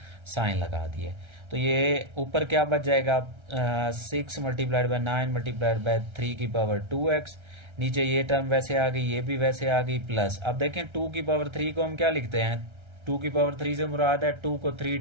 साइन लगा दिए। तो ये ऊपर क्या बच जाएगा, 6 मल्टीप्लाइड बाय 9 मल्टीप्लाइड बाय 3 की पावर 2x, नीचे ये टर्म वैसे आ गई, ये भी वैसे आ गई, प्लस अब देखें 2 की पावर 3 को हम क्या लिखते हैं, 2 की पावर 3 से मुराद है 2 को 3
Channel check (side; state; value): left; late; 1.3 ms